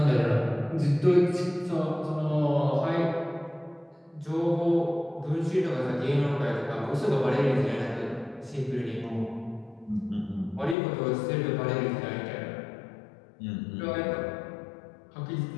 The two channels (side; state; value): right; drops out; at 10.8 s